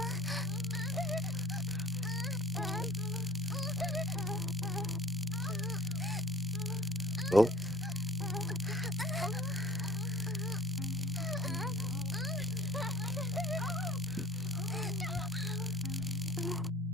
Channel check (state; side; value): normal; both; correlation 0.49